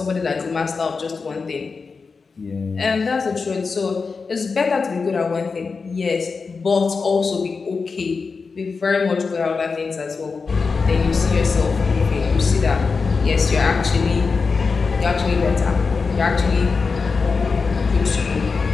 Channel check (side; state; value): right; quieter; 4.7 dB